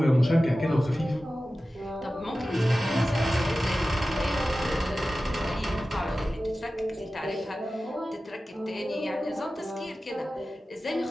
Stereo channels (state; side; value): normal; both; correlation 0.95